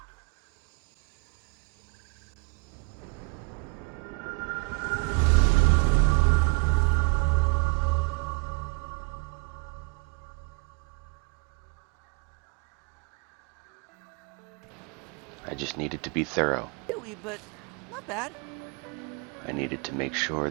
I just needed to be thorough. Really, but not bad. I needed to make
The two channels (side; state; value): left; quieter; 31.0 dB